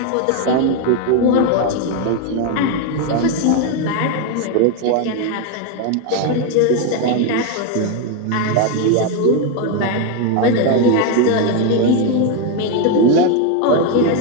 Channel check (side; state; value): both; different; correlation 0.02